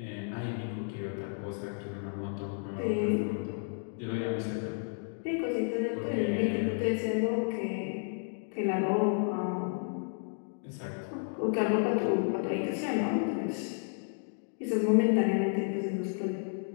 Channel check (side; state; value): right; silent; 56 dB below the other